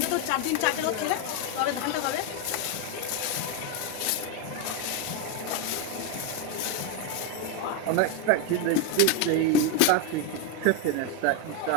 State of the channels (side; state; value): both; different; correlation 0.02